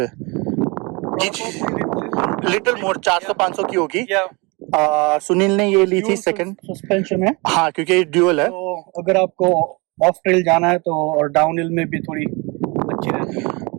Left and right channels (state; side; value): quieter; left; 27.7 dB